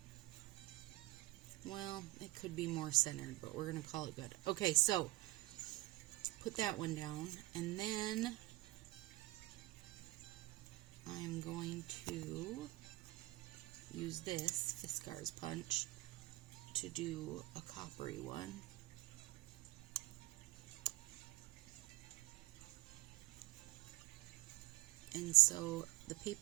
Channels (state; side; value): quieter; left; 20.5 dB